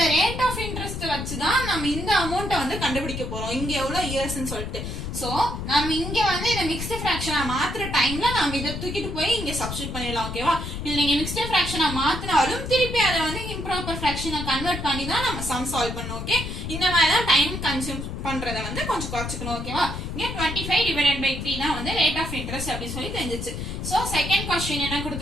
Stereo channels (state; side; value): noise; left; rumble, 6 dB below the sound